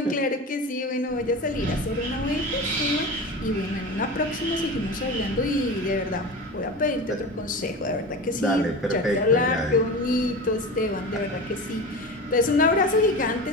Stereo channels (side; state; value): both; normal; correlation 0.29